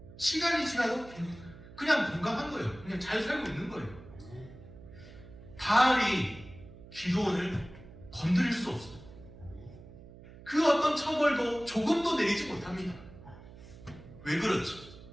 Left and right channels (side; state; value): right; noise; hum, 18 dB below the sound